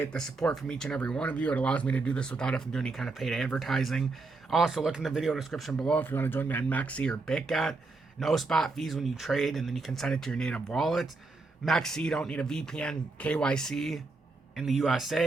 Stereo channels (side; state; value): left; quieter; 3.7 dB